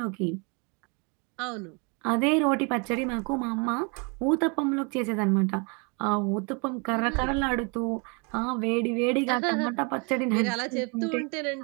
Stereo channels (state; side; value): quieter; left; 32.8 dB